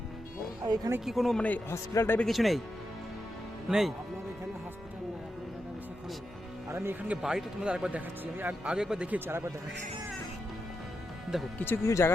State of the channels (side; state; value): both; normal; correlation 0.86